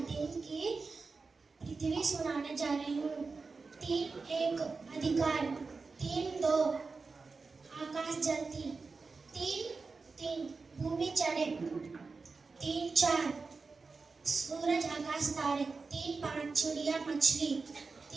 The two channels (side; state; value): left; quieter; 4.3 dB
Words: दिन की पृथ्वी सुनाने जा रही हूँ. 3:1 अधिकार. 3:2 आकाश जलती. 3:3 भूमि चढ़े. 3:4 सूरज आकाश तारे. 3:5 चिड़िया मछली.